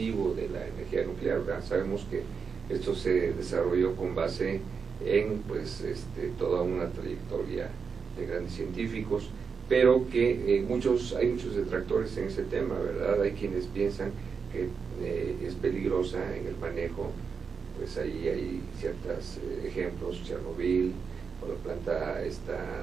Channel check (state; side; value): quieter; left; 5.8 dB